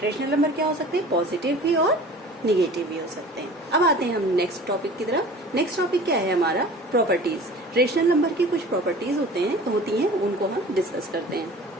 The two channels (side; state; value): both; normal; correlation 0.43